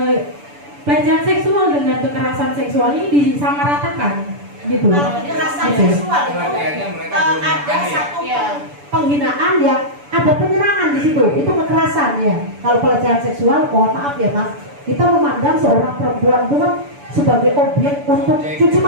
pelecehan seksual dengan kekerasan seksual ini disamaratakan gitu. Kalau kekerasan Gitu. seksual itu ada satu Penghinaan yang ada penyerangan di situ, itu kekerasan ya. Kalau pelecehan seksual, mohon maaf ya Mas, kita memandang seorang perempuan itu kan sebagai objek untuk cuci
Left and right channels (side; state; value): left; late; 6.9 ms